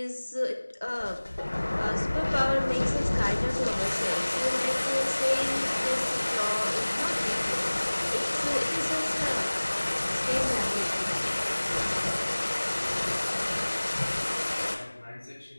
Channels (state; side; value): inverted; both; correlation -1.00